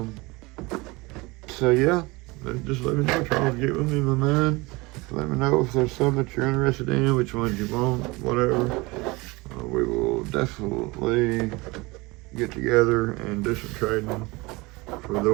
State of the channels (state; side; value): quieter; left; 23.9 dB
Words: So yeah, just let me know, Charles. Get with me, my man. Let me know if there's some that you're interested in, which ones you want, whatever. We will definitely get together and do some trading for the